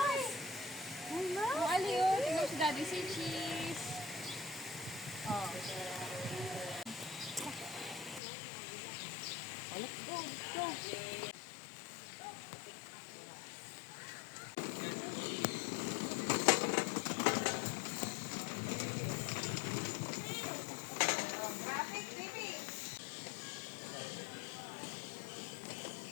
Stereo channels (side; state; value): right; drops out; at 8.2 s